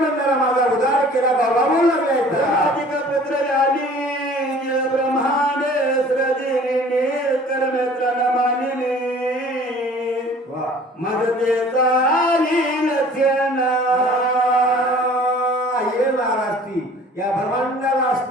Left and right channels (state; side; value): normal; both; correlation 0.49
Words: माझा उद्धार केला बाबा बोल लागलाय. पुत्र आली ब्रह्मांड सृजिनी कर्मेत्र नमानिनी मदते चाली लक्षणा. ये महाराष्ट्री ब्रह्मांडाला